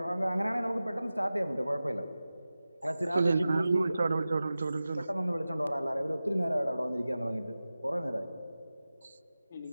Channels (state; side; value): inverted; both; correlation -0.95